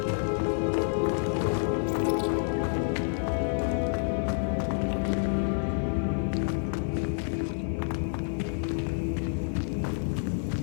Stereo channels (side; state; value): right; silent; digital silence